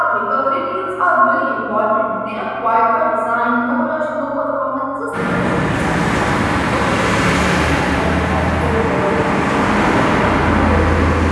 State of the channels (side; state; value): both; identical; correlation 1.00